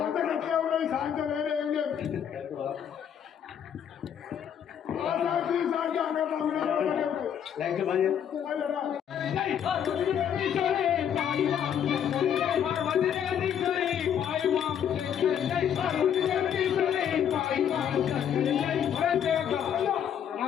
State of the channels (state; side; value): quieter; right; 8.9 dB